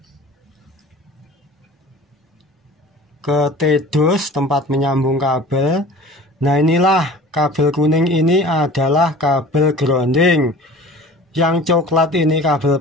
ke T-dos tempat menyambung kabel. Nah, inilah kabel kuning ini adalah kabel grounding. Yang coklat ini kabel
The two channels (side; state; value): both; normal; correlation 0.42